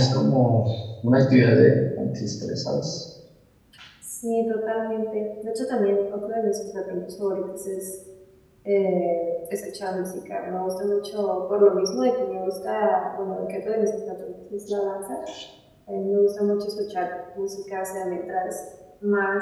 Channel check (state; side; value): identical; both; correlation 1.00